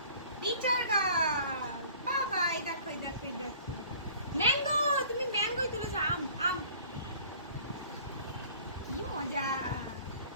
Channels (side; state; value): both; inverted; correlation -0.50